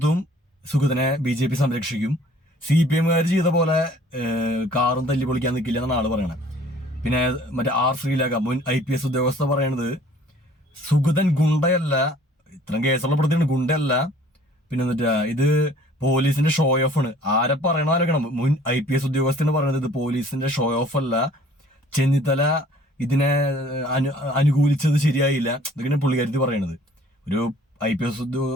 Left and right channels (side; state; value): both; normal; correlation 0.54